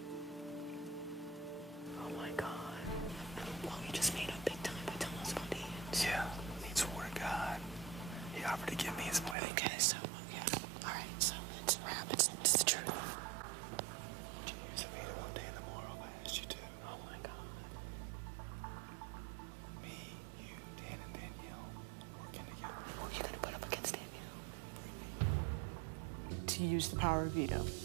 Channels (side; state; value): left; drops out; at 9.3 s